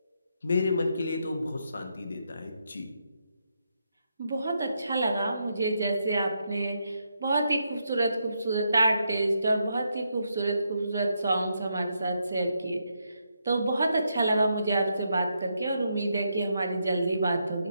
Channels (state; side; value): inverted; both; correlation -0.80